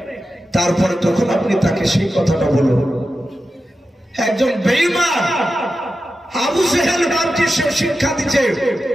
তারপরে তখন আপনি তাকে সেই কথাটা বলুন। একজন বেঈমান আবু জেহেল বাপকে সে শিক্ষা দিচ্ছে।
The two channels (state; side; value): normal; both; correlation 0.91